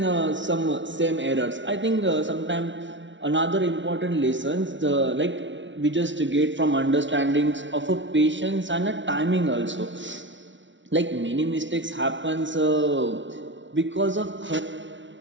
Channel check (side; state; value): left; late; 0.55 ms